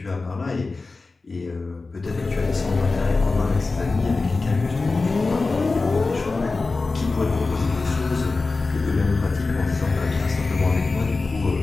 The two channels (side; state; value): right; quieter; 3.7 dB